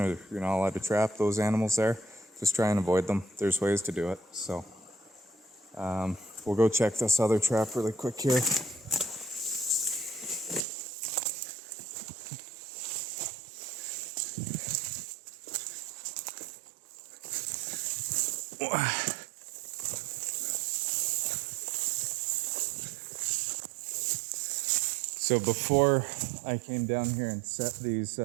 you're not allowed to trap those animals there, just try and avoid them. There's ways to do it. So we'll go check this other trap really quick here. So before I came down here and set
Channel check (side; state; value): left; drops out; at 10.6 s